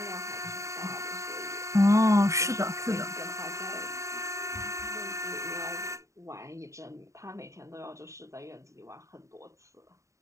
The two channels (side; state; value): left; late; 0.15 ms